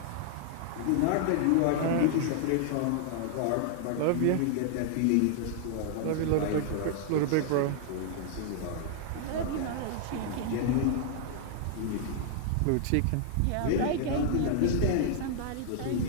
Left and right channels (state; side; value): different; both; correlation -0.01